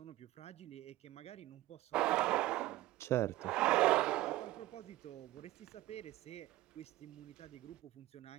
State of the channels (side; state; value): left; quieter; 16.8 dB